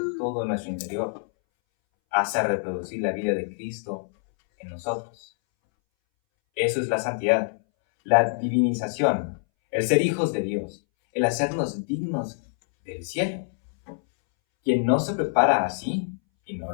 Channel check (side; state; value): right; silent; 61 dB below the other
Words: todo nuestro interior, hasta reproducir la vida de Cristo en nosotros. Eso es la santidad, la divinización, el ser hijos de Dios, el hacernos dignos del cielo. Quien no se prepara así y no